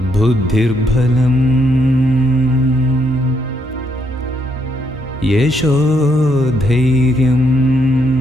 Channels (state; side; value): normal; both; correlation 0.75